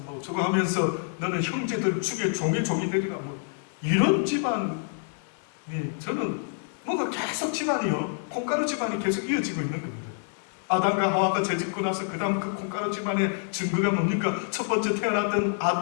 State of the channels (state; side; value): silent; right; 60 dB below the other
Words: 저거 하면서 너는 형제들 죽여 종이 되리라 이런 집안이 저는 뭔가 계속 집안이요 콩가루 집안이 계속 이어지고 있는 겁니다. 아담과 하와가 죄짓고 나서 그 다음 그 콩가루 집안의 증거가 뭡니까? 첫 번째 태어났던